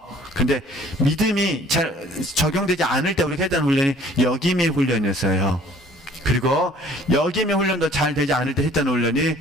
근데 믿음이 잘 적용되지 않을 때 우리가 했던 훈련이 여김의 훈련이었어요. 그리고 여김의 훈련도 잘 되지 않을 때 했던 훈련이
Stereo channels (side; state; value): both; normal; correlation 0.54